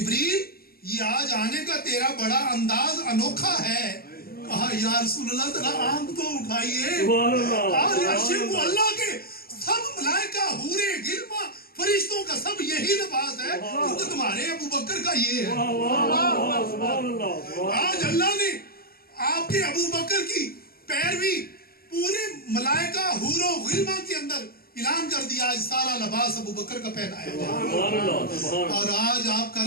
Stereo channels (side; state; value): right; late; 0.44 ms